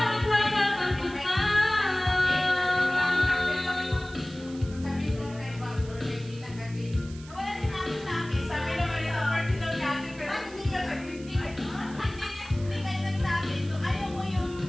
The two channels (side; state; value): right; noise; hiss, 20 dB below the sound